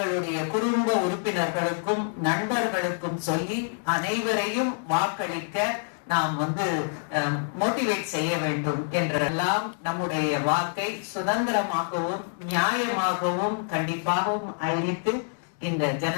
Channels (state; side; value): silent; right; 60 dB below the other